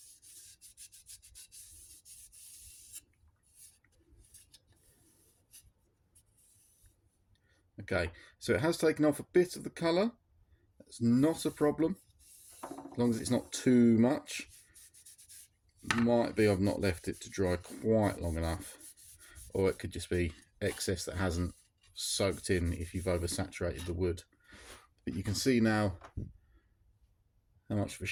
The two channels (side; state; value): both; identical; correlation 1.00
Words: Okay, so it has taken off a bit of the colour. That's not a problem, as long as it's not too much. Might be I've not left it to dry quite long enough, or it could just be excess that hasn't soaked in if you've oversaturated the wood. But you can see now how much of a